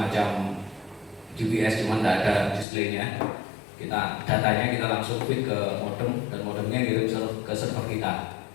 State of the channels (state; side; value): drops out; right; at 2.7 s